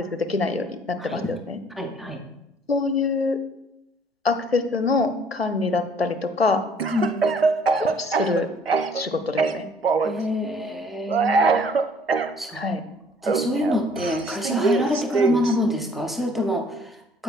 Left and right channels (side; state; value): both; normal; correlation 0.58